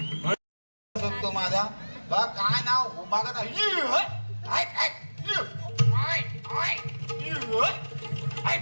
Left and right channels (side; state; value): both; inverted; correlation -1.00